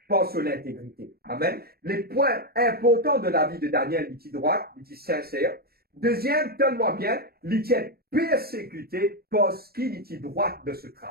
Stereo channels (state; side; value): late; left; 0.45 ms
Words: par son intégrité. Amen. Les points importants de la vie de Daniel, il était droit, il était sincère. Deuxième, tellement bien, il était persécuté parce qu'il était droit de ce